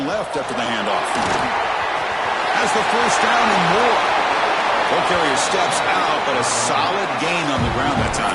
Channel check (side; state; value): both; identical; correlation 1.00